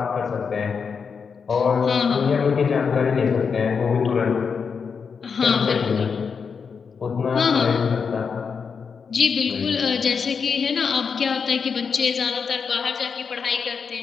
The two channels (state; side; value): quieter; right; 5.9 dB